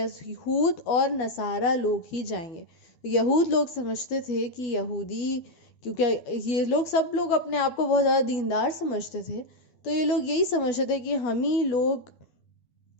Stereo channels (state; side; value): late; right; 12 ms